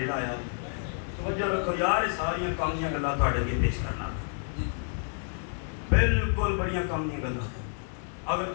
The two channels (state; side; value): silent; right; 58 dB below the other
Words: لایا۔ توجہ رکھو یار، یہ ساری کامیاں گلاں تواڈے اگے پیش کرنا، بالکل بڑیاں کامیاں گلاں، اگر